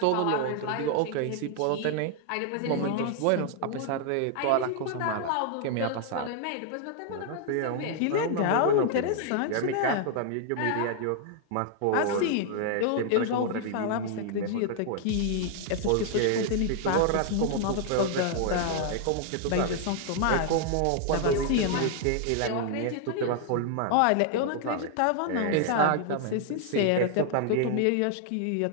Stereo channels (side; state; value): both; different; correlation 0.00